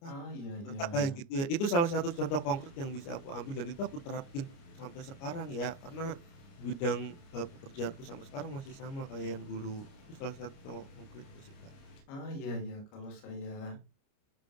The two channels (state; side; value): late; right; 29 ms